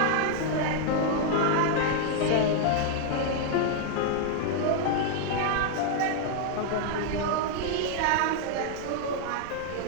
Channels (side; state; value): both; different; correlation 0.00